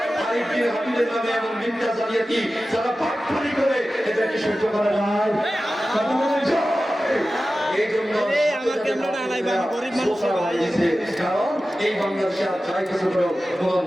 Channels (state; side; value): normal; both; correlation 0.95